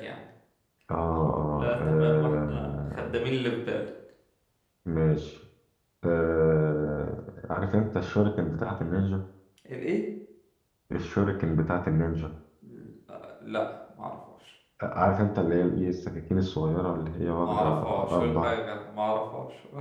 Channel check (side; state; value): both; identical; correlation 1.00